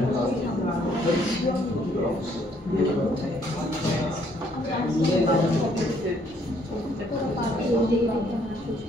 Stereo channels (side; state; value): both; normal; correlation 0.66